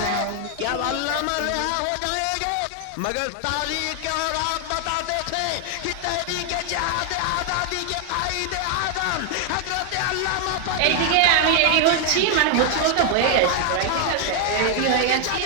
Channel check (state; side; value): different; both; correlation 0.00